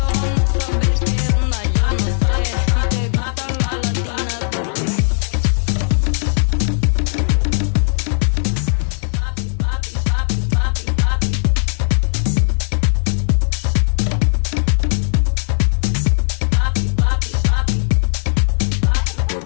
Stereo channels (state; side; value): silent; right; digital silence